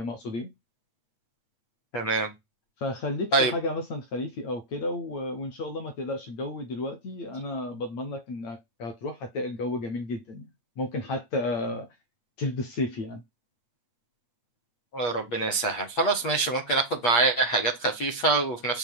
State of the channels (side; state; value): right; late; 8.5 ms